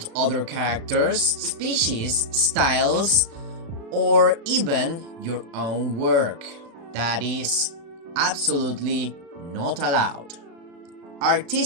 other characters, species, styles, or even your own work. That is absolutely not allowed.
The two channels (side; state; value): left; late; 36 ms